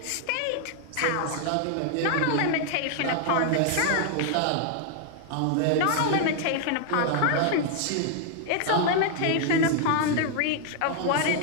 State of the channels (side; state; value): both; different; correlation 0.00